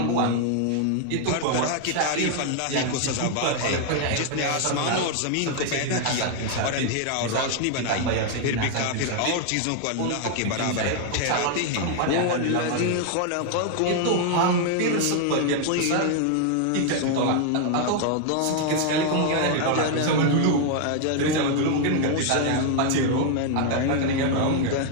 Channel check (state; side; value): different; both; correlation 0.00